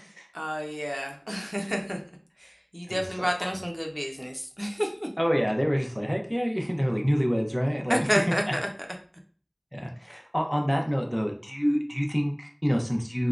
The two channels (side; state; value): both; identical; correlation 1.00